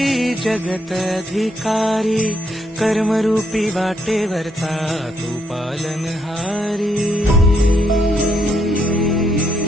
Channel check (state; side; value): normal; both; correlation 0.75